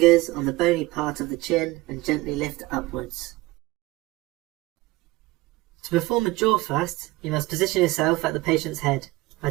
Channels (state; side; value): quieter; left; 20.1 dB